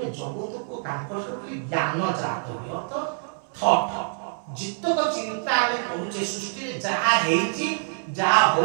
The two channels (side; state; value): left; silent; 61 dB below the other